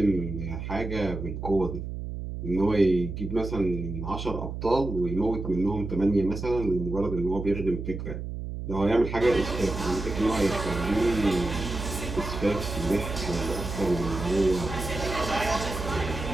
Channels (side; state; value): right; noise; hum, 6 dB below the sound